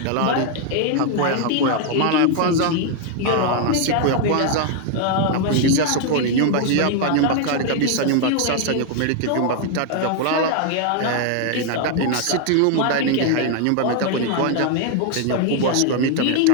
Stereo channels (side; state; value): both; different; correlation 0.00